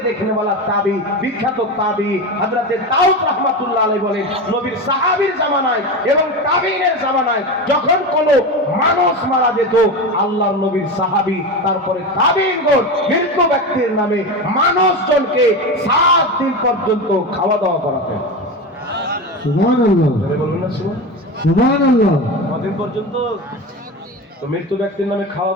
দেখনে वाला তাবি, বিখ্যাত তাবি হযরতে দাউদ রাহমাতুল্লাহ আলাইহি বলেন, নবীর সাহাবীর জামানায় এবং তাবিঈনের জামানায় যখন কোনো মানুষ মারা যেত, আল্লাহর নবীর সাহাবী তারপরে তাবিঈনগণ মৃত্যু ব্যক্তির নামে মানুষজনকে 7 দিন পর্যন্ত খাওয়া দাওয়া করাতেন। সুবহানাল্লাহ, বলুন না সুবহানাল্লাহ। কতদিন পর্যন্ত? তো মৃত্যু ব্যক্তির নামে খাওয়া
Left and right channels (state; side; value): normal; both; correlation 0.22